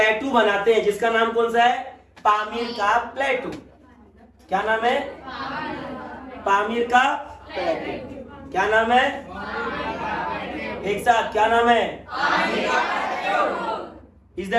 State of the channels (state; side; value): identical; both; correlation 1.00